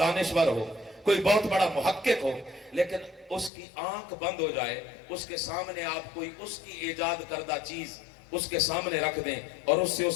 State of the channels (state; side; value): drops out; right; at 3.5 s